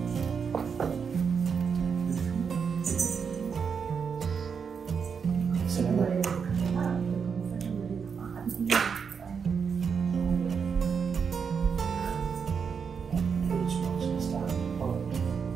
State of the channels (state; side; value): quieter; left; 6.3 dB